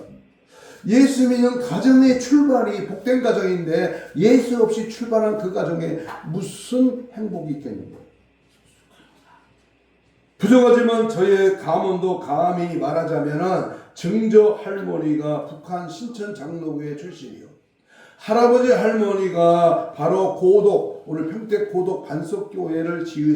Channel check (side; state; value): both; identical; correlation 1.00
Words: 예수 믿는 가정의 출발이 복된 가정인데 예수 없이 출발한 그 가정에 무슨 행복이 있겠는가? 부족하지만 저의 가문도 감히 말하자면 증조 할머니가 북한 신천 장로교회 출신이요, 할아버지 할머니가 바로 고독, 오늘 평택 고독 반석교회를